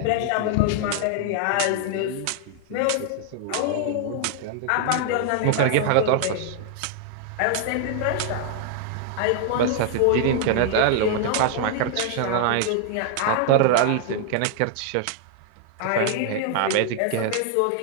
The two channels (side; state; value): both; different; correlation 0.00